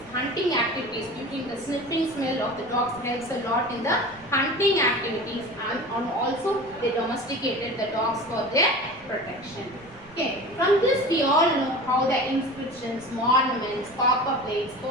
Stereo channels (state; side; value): noise; right; rumble, 25 dB below the sound